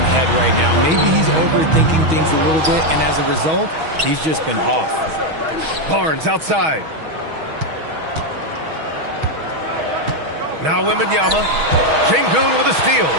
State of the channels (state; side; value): late; left; 6.3 ms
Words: head right now. Maybe he's overthinking things a little bit, and as a result, he's just been off. Barnes outside. Now Wembanyama. Şengün with a steal.